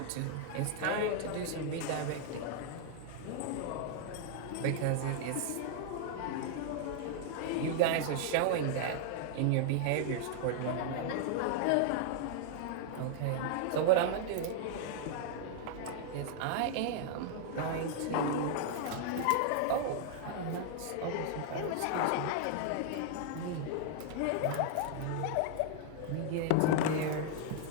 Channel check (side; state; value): both; different; correlation 0.00